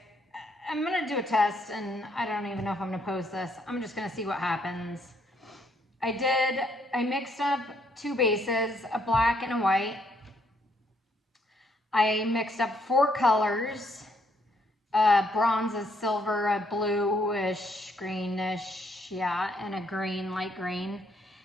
I'm gonna do a test and I don't even know if I'm gonna post this. I'm just gonna see what happens. I mixed up two bases, a black and a white. I mixed up 4 colors, bronze, a silver, a bluish, greenish, yeah, and a green, light green.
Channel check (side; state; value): both; normal; correlation 0.70